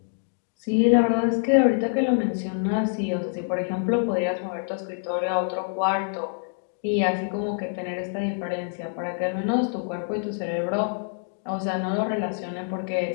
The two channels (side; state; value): right; silent; digital silence